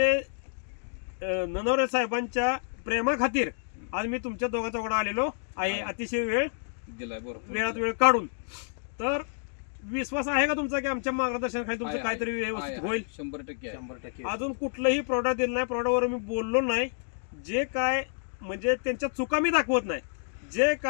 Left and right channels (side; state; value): right; silent; digital silence